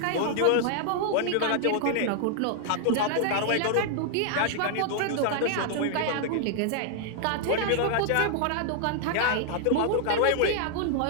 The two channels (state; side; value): different; both; correlation 0.00